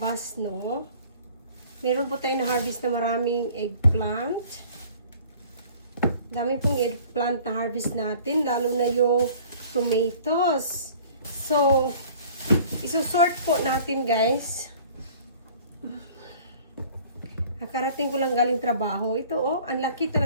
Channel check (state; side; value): inverted; both; correlation -0.50